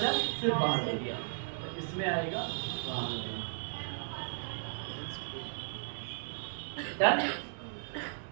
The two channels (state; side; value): silent; left; digital silence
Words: सिर्फ बाहर ले लिया, तो इसमें आएगा बाहर। डन।